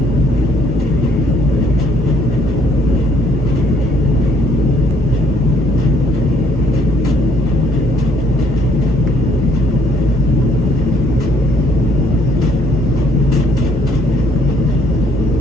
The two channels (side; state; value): both; normal; correlation 0.65